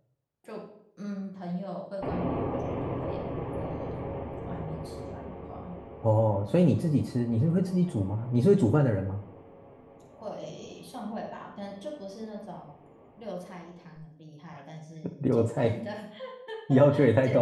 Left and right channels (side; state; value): both; identical; correlation 1.00